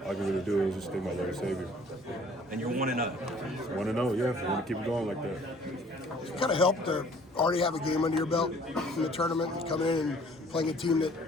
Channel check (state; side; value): normal; both; correlation 0.55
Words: all I can really do is just thank my Lord and Savior. And you're 1-0. 1-0, yeah. I want to keep it going like that. It kind of helped to already have a game under your belt in the tournament and coming in and playing a team that